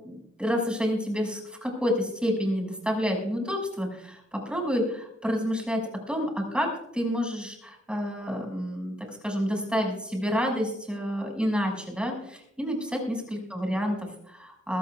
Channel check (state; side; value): normal; both; correlation 0.74